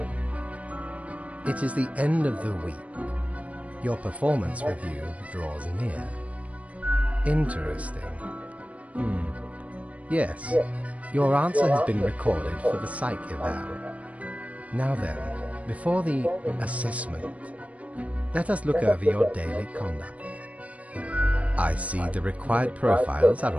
It is the end of the week. Your performance review draws near. Interesting. Yes, your answer has been recorded for the psych eval. Now then, before the assessment, let us look over your daily conduct. I see the required profiles are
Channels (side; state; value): left; late; 0.066 ms